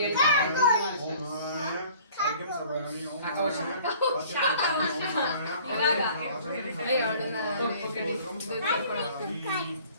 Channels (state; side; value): inverted; both; correlation -0.51